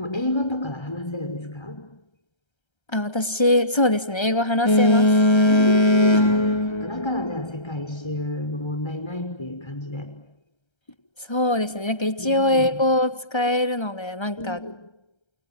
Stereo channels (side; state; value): right; late; 1.3 ms